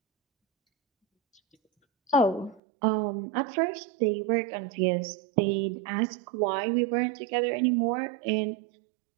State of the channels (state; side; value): drops out; left; at 2.6 s